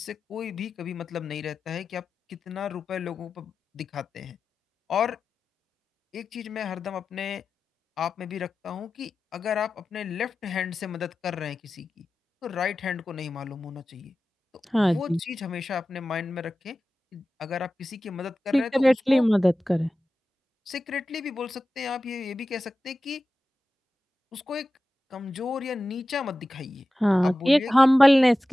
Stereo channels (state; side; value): normal; both; correlation 0.94